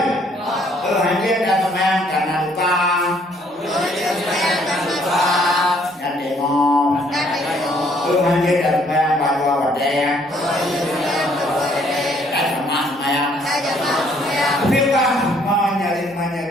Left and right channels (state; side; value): normal; both; correlation 0.64